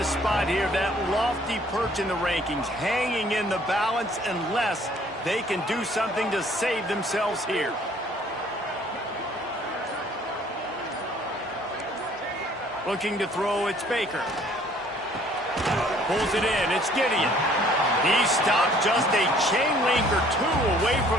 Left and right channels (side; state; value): both; normal; correlation 0.58